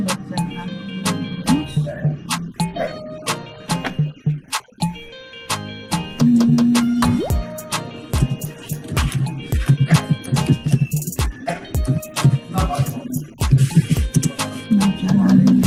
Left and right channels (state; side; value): identical; both; correlation 1.00